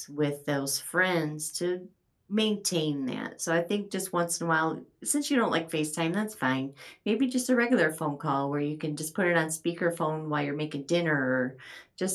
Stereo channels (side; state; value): both; identical; correlation 1.00